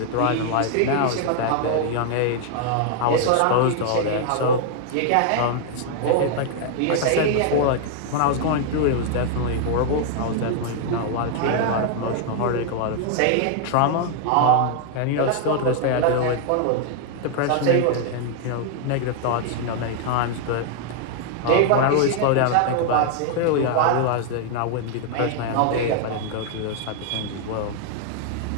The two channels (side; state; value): both; different; correlation 0.00